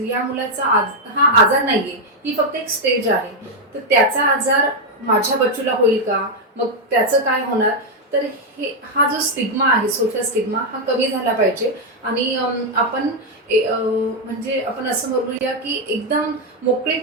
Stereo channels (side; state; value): both; normal; correlation 0.02